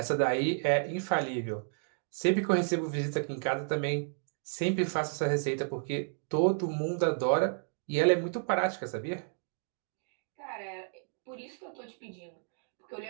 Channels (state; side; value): silent; left; digital silence